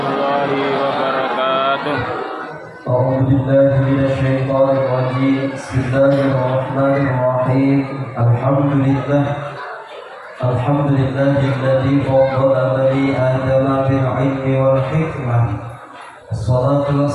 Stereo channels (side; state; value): both; identical; correlation 1.00